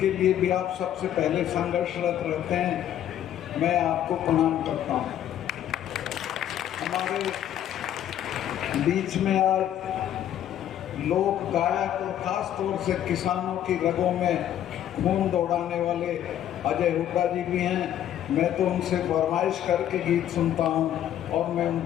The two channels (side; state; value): right; quieter; 11.1 dB